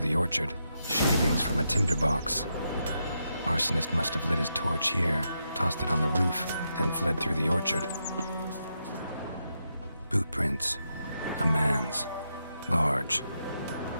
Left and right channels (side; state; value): both; inverted; correlation -0.84